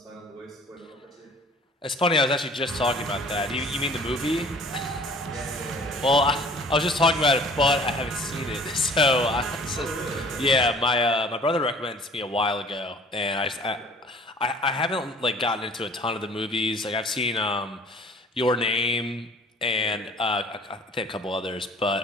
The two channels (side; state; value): both; normal; correlation 0.50